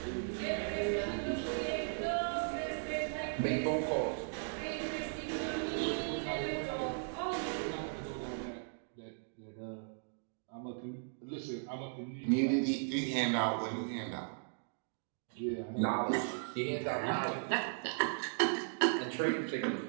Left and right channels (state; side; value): silent; left; digital silence